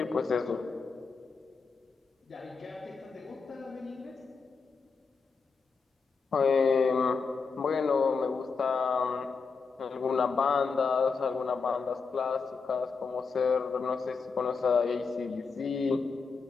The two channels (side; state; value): right; quieter; 5.0 dB